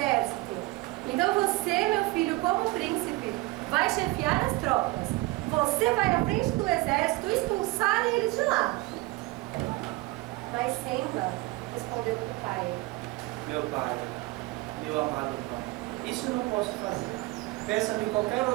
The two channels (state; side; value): quieter; left; 21.1 dB